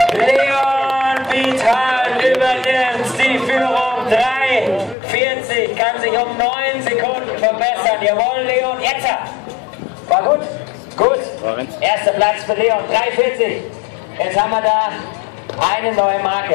Leon Wildheim übernimmt die Führung. 3:40, kann sich um 9 Sekunden verbessern. Jawohl, Leon, jetzt! War gut? Gut. Erster Platz für Leon, 3:40. Jetzt haben wir da eine neue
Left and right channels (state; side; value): drops out; right; at 5.0 s